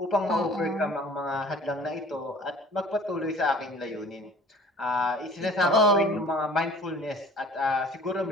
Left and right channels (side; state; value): both; normal; correlation 0.48